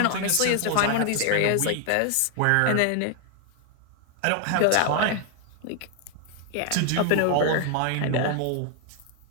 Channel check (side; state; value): both; different; correlation 0.00